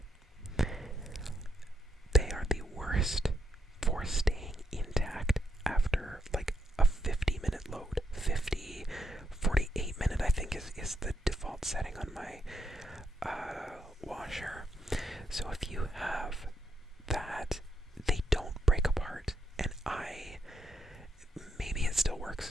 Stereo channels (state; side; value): normal; both; correlation 0.79